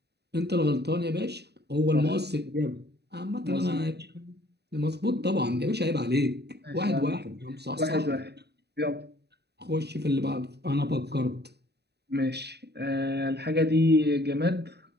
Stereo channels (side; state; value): left; late; 0.48 ms